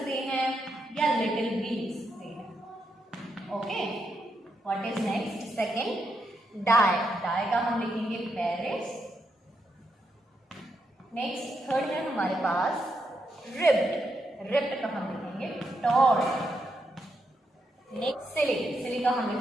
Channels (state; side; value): normal; both; correlation 0.82